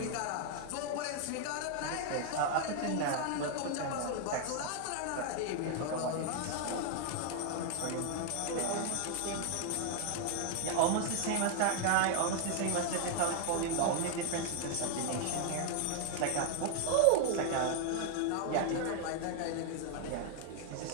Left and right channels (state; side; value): different; both; correlation 0.00